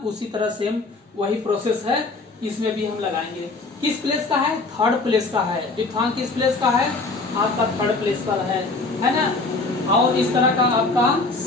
उसी तरह सेम वही प्रोसेस है, इसमें भी हम लगाएंगे। किस प्लेस का है, थर्ड प्लेस का है। डिफथॉन्ग किस प्लेस का है, आपका थर्ड प्लेस पर है ना। और इस तरह का आपका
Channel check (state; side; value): quieter; right; 3.5 dB